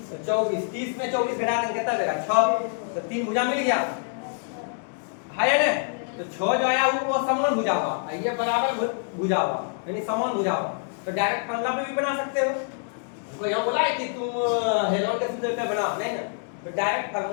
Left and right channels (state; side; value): silent; right; 61 dB below the other